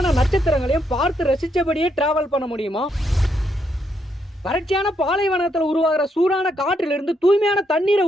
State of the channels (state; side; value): normal; both; correlation 0.77